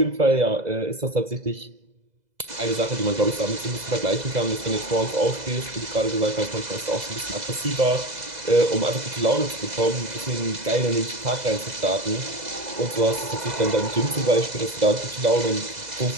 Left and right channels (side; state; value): left; late; 2.0 ms